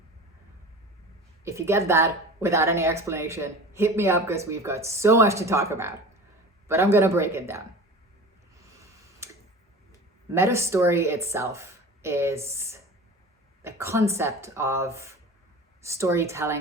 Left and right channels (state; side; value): normal; both; correlation 0.37